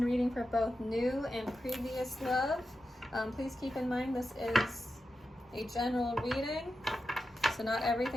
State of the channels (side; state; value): both; normal; correlation 0.90